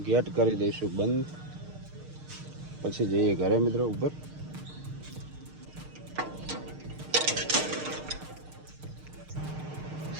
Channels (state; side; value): late; left; 6.5 ms